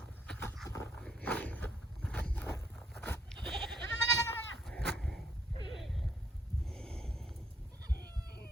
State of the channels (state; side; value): normal; both; correlation 0.71